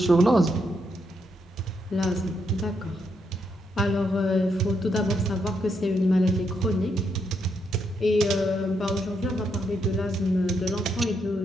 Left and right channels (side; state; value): both; normal; correlation 0.78